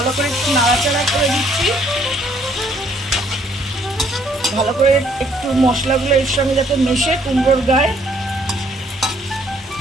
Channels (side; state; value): both; normal; correlation 0.65